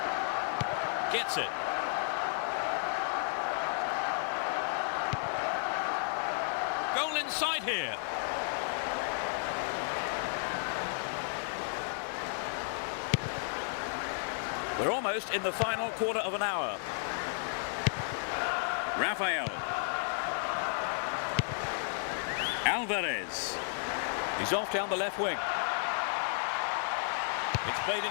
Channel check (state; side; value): silent; right; 56 dB below the other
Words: Gets it. Goal inside here. We're almost in the final quarter of an hour. Rafael. Alvarez. He's off down the left wing. It's played